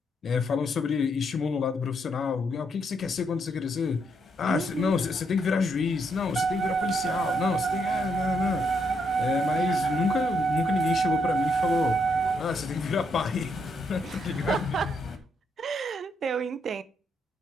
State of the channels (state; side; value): normal; both; correlation 0.76